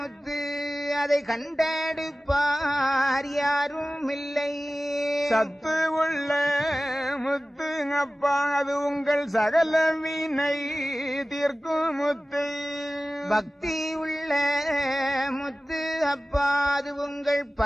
அதை கண்டெடுப்பார் யாரும் இல்லை சத்து உள்ள முத்து அப்பா அது உங்கள் சகல வினை தீர்க்கும் முத்து பக்தி உள்ள முத்து அப்பா அது உங்கள்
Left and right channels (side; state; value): both; normal; correlation 0.96